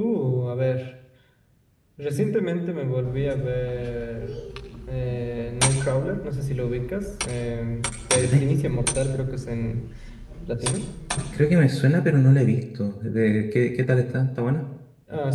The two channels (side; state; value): both; identical; correlation 1.00